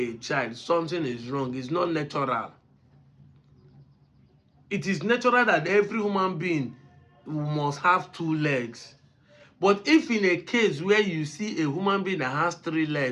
child, something is wrong. It's not natural. It is natural that every human being must have 2 legs. But if in a case where you see a human being that has 3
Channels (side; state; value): both; identical; correlation 1.00